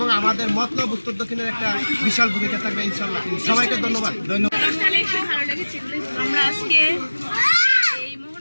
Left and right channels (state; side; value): inverted; both; correlation -1.00